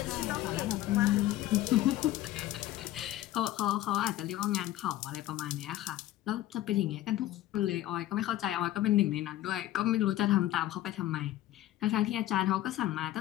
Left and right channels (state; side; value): quieter; right; 14.4 dB